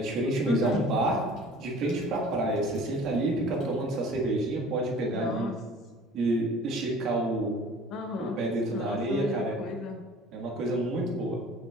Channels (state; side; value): normal; both; correlation 0.47